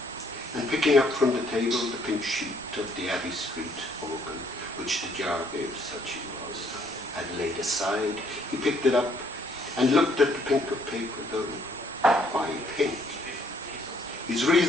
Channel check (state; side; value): normal; both; correlation 0.66